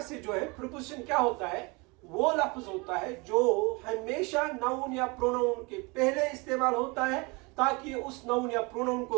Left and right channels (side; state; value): left; quieter; 27.8 dB